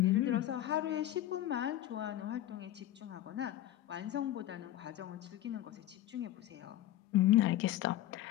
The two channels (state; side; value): quieter; right; 13.6 dB